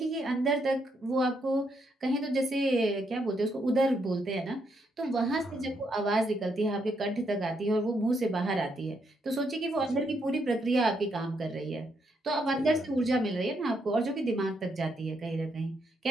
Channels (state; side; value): normal; both; correlation 0.77